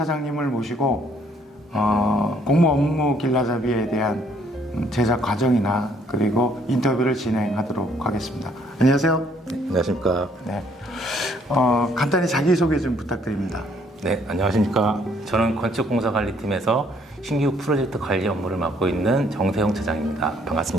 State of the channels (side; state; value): both; normal; correlation 0.64